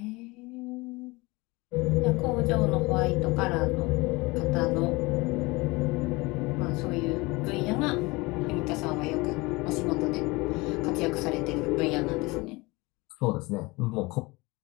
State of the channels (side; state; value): right; quieter; 23.7 dB